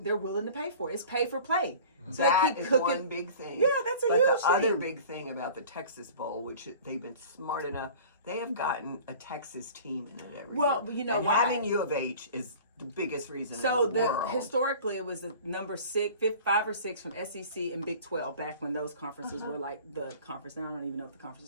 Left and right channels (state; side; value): inverted; both; correlation -0.42